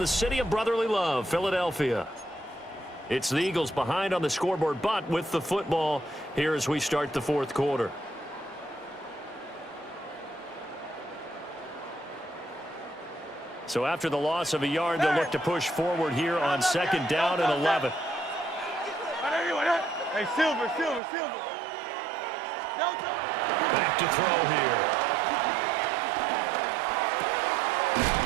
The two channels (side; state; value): left; drops out; at 21.0 s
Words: city of brotherly love, Philadelphia. It's the Eagles behind on the scoreboard, but with the football here as we start the 4th quarter. So after the loss of a yard, they'll look to push forward here on 2nd down and 11. Hey, Silver. Back to throw here.